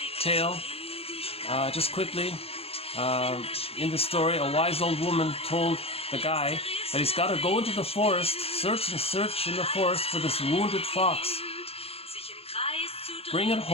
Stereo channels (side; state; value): right; late; 0.28 ms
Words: tale. Just quickly, in the story, a wise old woman told the guy that he's got to go into the forest, search and search in the forest for this wounded fox. Bring it